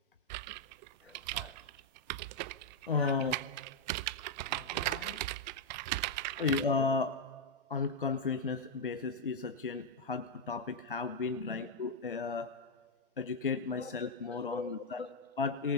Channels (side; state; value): both; normal; correlation 0.00